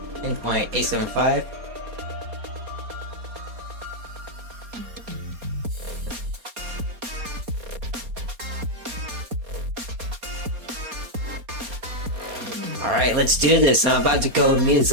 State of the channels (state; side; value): late; left; 4.2 ms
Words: In 0.875. Alright, let's do this. I'm about to go